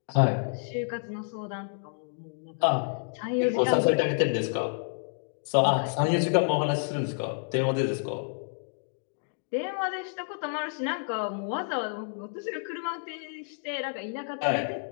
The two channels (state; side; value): silent; right; digital silence